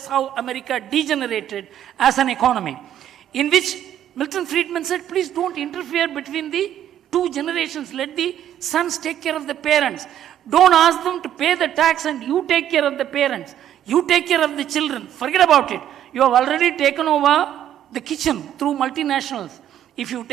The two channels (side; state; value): left; quieter; 10.8 dB